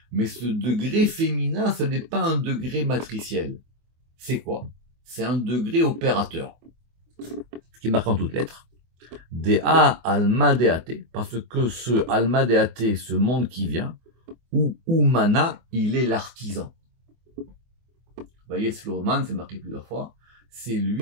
Mais ce degré féminin, ce n'est pas un degré matriciel. C'est quoi? C'est un degré opérateur. Ce qui est marqué en toutes lettres. Dea Almadeate. Parce que ce Almadeate, ce monde qui vient, ou Umana, il est l'artisan. Vous voyez, Sloman, c'est marqué plusieurs fois. C'est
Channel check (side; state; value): left; late; 24 ms